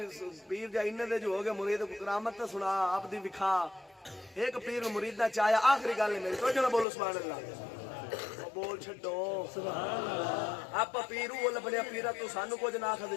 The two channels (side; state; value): right; drops out; at 6.9 s